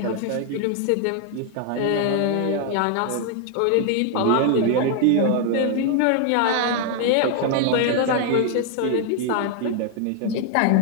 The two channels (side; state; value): both; different; correlation 0.00